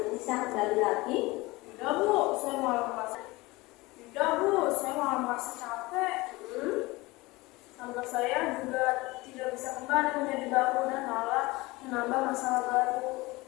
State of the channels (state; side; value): quieter; right; 21.7 dB